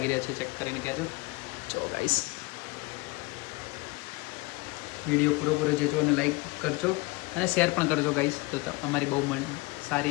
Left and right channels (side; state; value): right; quieter; 24.1 dB